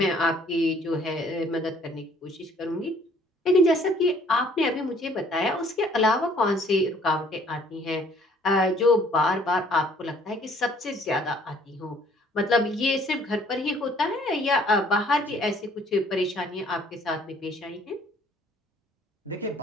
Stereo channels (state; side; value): normal; both; correlation 0.60